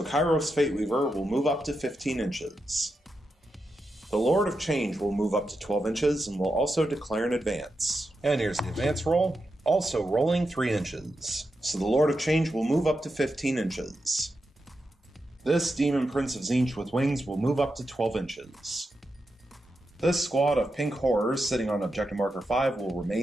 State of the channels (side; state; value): both; normal; correlation 0.87